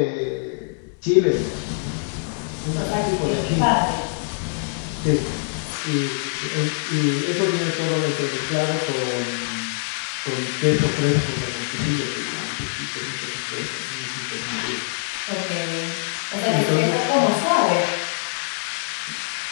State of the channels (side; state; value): right; silent; digital silence